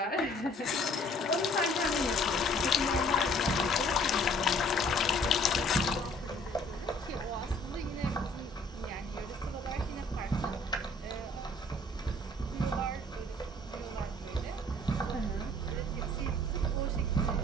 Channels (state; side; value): normal; both; correlation 0.57